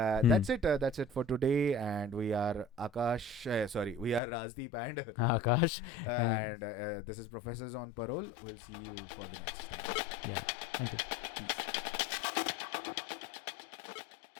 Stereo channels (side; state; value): right; drops out; at 4.2 s